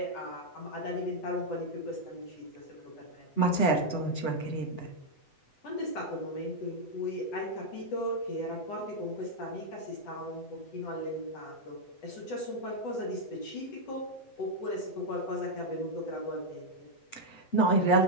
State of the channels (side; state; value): right; late; 7.9 ms